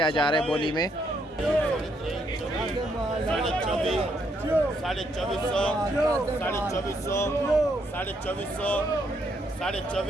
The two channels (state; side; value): normal; both; correlation 0.74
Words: जा रहा है बोली में।